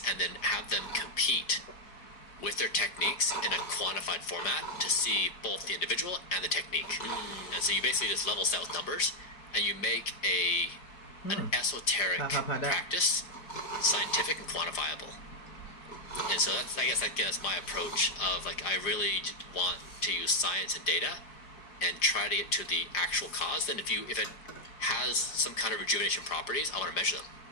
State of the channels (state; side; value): late; right; 4.6 ms